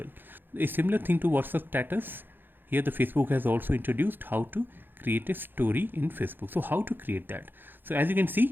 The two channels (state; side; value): late; left; 0.097 ms